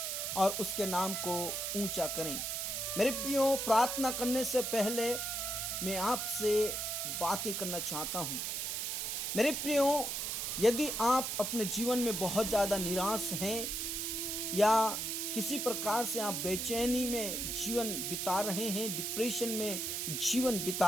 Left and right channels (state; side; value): noise; right; hiss, 2 dB below the sound